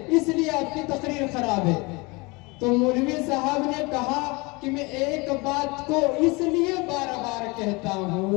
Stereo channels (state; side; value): quieter; right; 26.3 dB